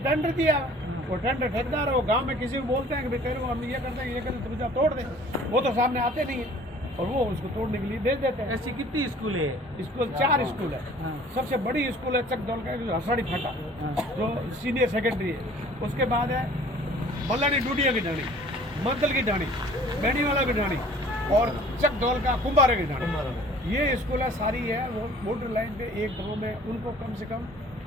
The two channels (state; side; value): normal; both; correlation 0.51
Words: टेंडर दिया, वो टेंडर ठेकेदार है, वो गांव में किसी को बोलते हैं कि भाई तेरे को हम ये करते हैं ये करते, तुम जा तोड़ दे, वो तो सामने आते नहीं है और वो उसको तोड़ने के लिए भेज देते हैं। ऐसी कितनी स्कूल है? स्कूल 4 स्कूल है। हाँ। सबसे बड़ी स्कूल है चकदौल का हसाड़ी फाटा, जो सीनियर सेकेंडरी है। उसके बाद है मल्लानी डूडिया की ढाणी, मंदल की ढाणी, बेनीवाला की ढाणी और चकदौल का कुंभारे की ढाणी। ये स्कूल है सारी है वो बॉर्डर लाइन पे एक गाँव में। उनको कम से कम